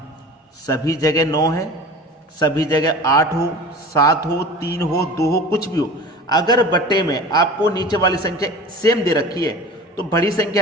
सभी जगह 9 है, सभी जगह 8 हो, 7 हो, 3 हो, 2 हो, कुछ भी हो, अगर बट्टे में आपको नीचे वाली संख्या सेम दे रखी है तो बड़ी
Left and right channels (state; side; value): normal; both; correlation 0.38